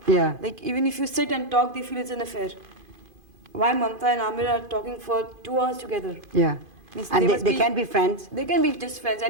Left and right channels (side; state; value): left; late; 2.5 ms